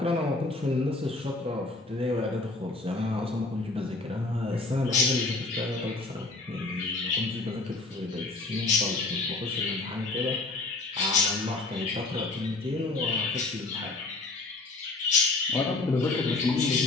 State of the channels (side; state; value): right; quieter; 3.4 dB